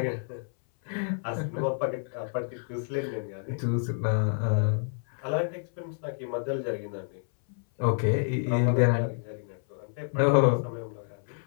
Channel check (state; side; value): silent; right; 59 dB below the other